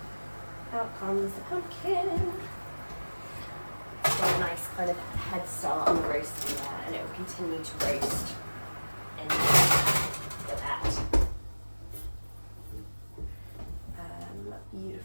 Out comes the pumpkin. It's got a nice kind of head start on the roasting there, and it will continue to roast in the galette.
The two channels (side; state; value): both; inverted; correlation -1.00